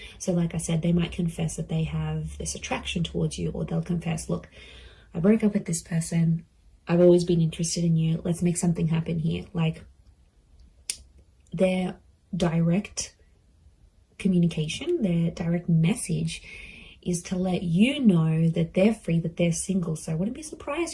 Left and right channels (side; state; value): both; identical; correlation 1.00